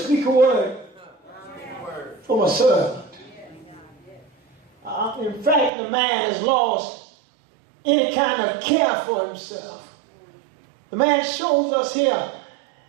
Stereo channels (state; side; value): drops out; left; at 5.7 s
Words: a word for my servant. In fact, the man has lost any kind of care for himself. The man shows us here